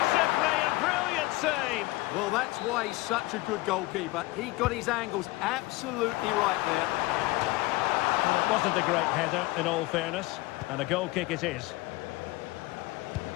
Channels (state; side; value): quieter; right; 21.0 dB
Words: simply, a brilliant save. Well, that's why he's such a good goalkeeper. He got his angles absolutely right there. Well, it wasn't a great header, in all fairness. And a goal kick it is.